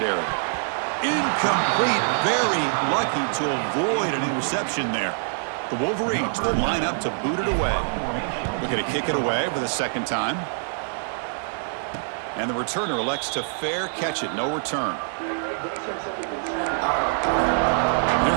Incomplete. Very lucky to avoid an interception there. The Wolverines will line up to boot it away. Looking to kick it away for the 2nd time. And the returner elects to fair catch it. No return. Here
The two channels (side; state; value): left; silent; digital silence